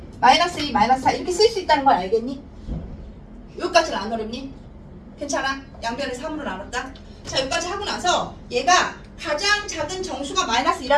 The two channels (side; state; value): both; identical; correlation 1.00